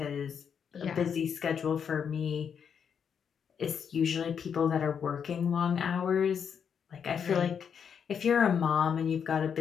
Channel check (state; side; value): quieter; right; 7.3 dB